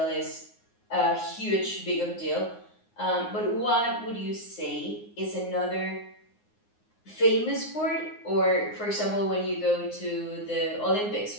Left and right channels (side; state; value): right; late; 9.6 ms